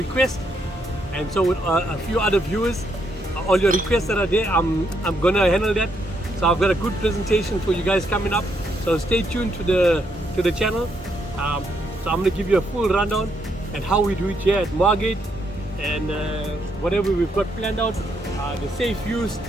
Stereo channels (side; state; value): both; normal; correlation 0.76